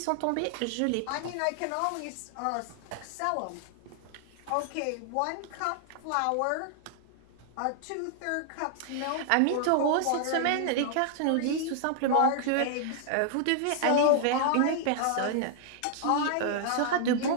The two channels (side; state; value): both; different; correlation -0.01